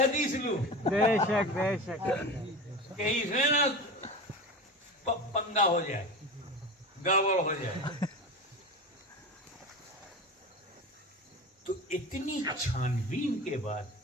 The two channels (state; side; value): normal; both; correlation 0.29